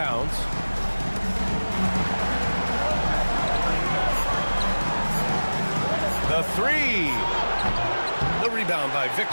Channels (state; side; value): inverted; both; correlation -1.00